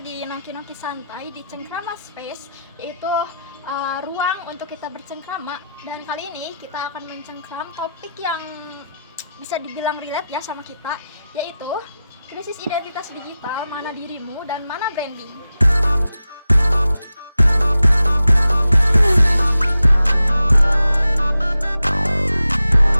nongki-nongki santai di Cengkrama Space, yaitu ruang untuk kita bercengkrama. Dan kali ini kita akan mencengkram topik yang bisa dibilang relate ya sama kita, yaitu krisis identitas digital, mana dirimu dan mana branding.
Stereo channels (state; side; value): inverted; both; correlation -0.90